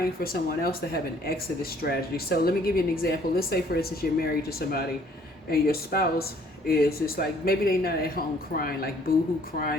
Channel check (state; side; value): normal; both; correlation 0.60